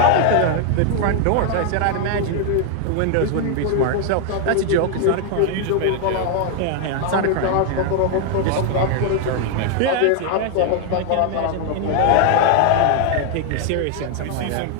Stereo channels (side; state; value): both; different; correlation 0.00